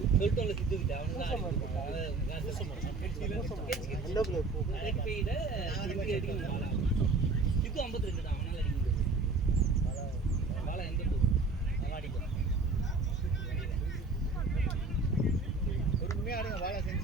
சொல்லிட்டோம்ல சித்துக்கிட்ட அவனுதான் எந்த பிளேயர் போ சித்து 52 தான் அவனால அடிக்க முடியாது பாலா எந்த பொறுமையா ஆடுங்க வாழை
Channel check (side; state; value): left; quieter; 3.7 dB